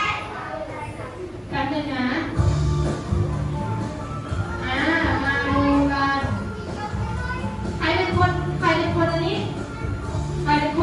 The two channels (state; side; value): identical; both; correlation 1.00